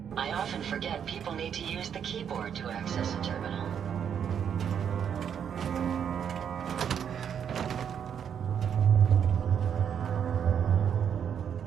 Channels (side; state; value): left; quieter; 8.1 dB